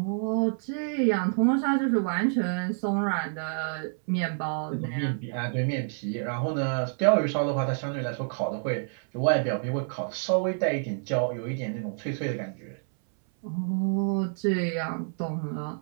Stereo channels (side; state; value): left; silent; 59 dB below the other